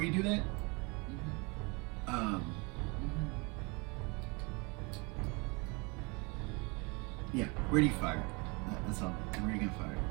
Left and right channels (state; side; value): quieter; left; 29.4 dB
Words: you do that, yeah. Where do you fire it? That's all. Where are you gonna fire